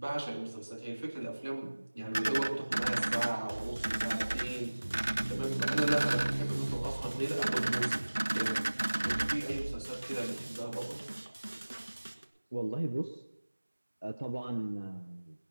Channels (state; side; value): inverted; both; correlation -1.00